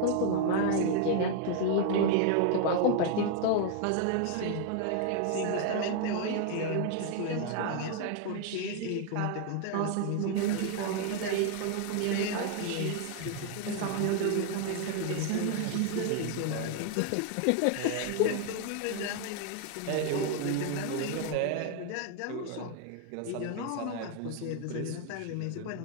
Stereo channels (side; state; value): both; different; correlation 0.00